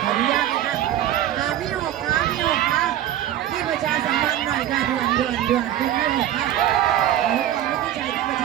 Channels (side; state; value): left; quieter; 12.1 dB